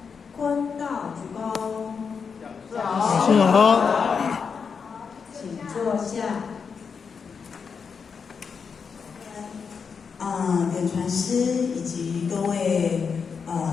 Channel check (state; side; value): quieter; right; 5.9 dB